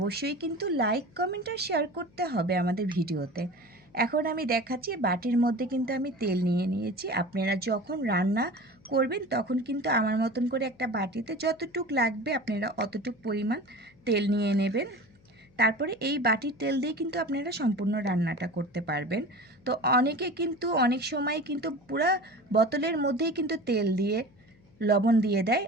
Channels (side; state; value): left; noise; hum, 30 dB below the sound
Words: কিন্তু লাইক কমেন্ট আর শেয়ার করতে হবে আমাদের ভিডিওতে। এখন আমি দেখাচ্ছি, বাটির মধ্যে কিন্তু আমি তেল নিয়ে নিয়েছি। আপনারা যখন রান্না করবেন তখন কিন্তু আমার মতন করে একটা বাটিতে যতটুক লাগবে আপনারা অতটুক পরিমাণ তেল নিয়ে নেবেন। তারপরে এই বাটির তেল দিয়ে কিন্তু আপনারা সম্পূর্ণ রান্নাটা করতে পারবেন। তো অনেকে কিন্তু অনেক সময় কিন্তু পুরা বোতলের মধ্যেই কিন্তু তেল দিয়ে লবণ দিয়ে দেয়।